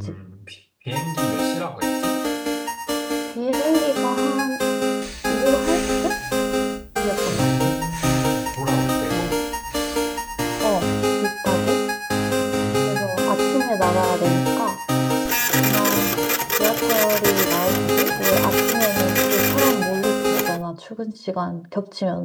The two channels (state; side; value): identical; both; correlation 1.00